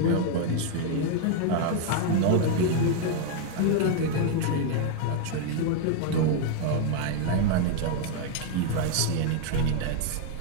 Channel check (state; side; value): different; both; correlation 0.00